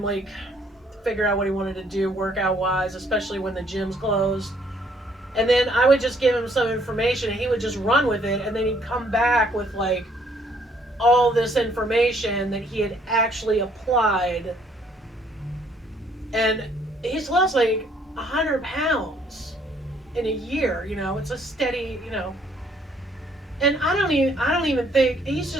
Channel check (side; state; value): both; normal; correlation 0.65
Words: figure out what he wanted to do workout wise, especially when the gym's closed. And then I would just give him some information and he would just run with it, and then he'd come back with all this information that he had actually applied. And he's lost 100 pounds in a year. It's a steady, and I don't even think he was